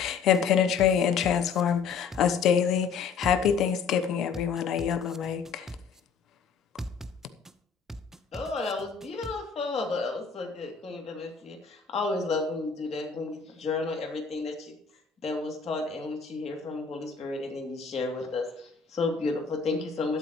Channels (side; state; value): right; quieter; 5.9 dB